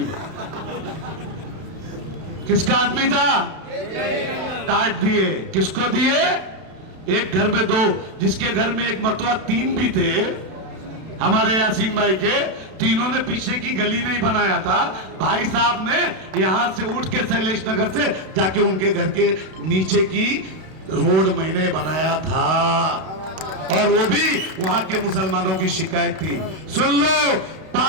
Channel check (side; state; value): left; late; 31 ms